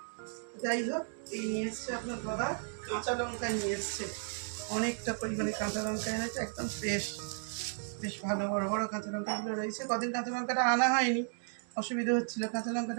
যাই হোক, এই নিয়ে এসছে আপনার দাদা কাঁচা লঙ্কা নিয়ে এসছে, অনেকটা পরিমাণে কাঁচা লঙ্কা এনেছে, একদম ফ্রেশ, বেশ ভালো বড় বড় কাঁচা লঙ্কাগুলো রয়েছে। কদিন কাঁচা লঙ্কাটা আনা হয়নি, অসুবিধা হচ্ছিল, কাঁচা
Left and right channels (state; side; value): silent; left; digital silence